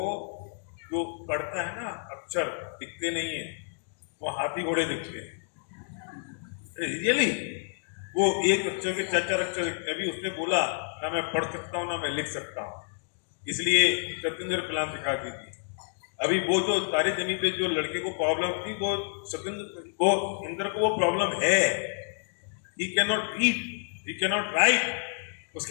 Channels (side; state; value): right; silent; digital silence